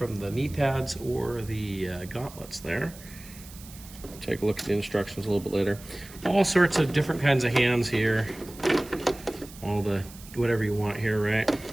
the knee pads or the gauntlets there. Take a look at the instructions a little bit later. All sorts of different kinds of hands here. All the, whatever you want here, right?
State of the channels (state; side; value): noise; right; hiss, 18 dB below the sound